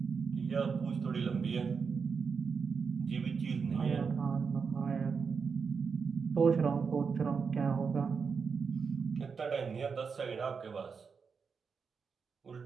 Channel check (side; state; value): left; quieter; 5.6 dB